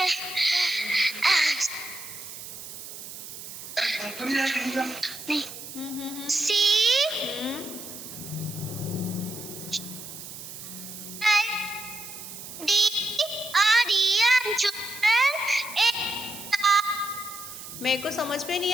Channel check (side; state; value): right; noise; hiss, 12 dB below the sound